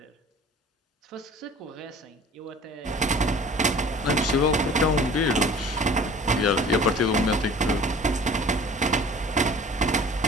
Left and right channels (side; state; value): both; normal; correlation 0.46